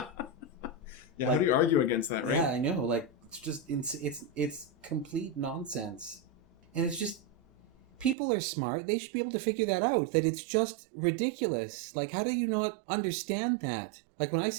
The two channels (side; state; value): left; drops out; at 8.2 s